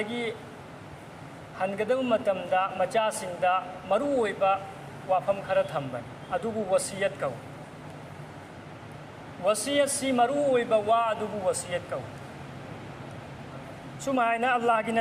Hangadam Matamda Machasinda Maruoiba Wafam Kharathamban Adubu Wasiyat Kau wasiyat si maruoiba wa adubu wasiyat kau. Sumayna Allah ki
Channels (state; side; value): identical; both; correlation 1.00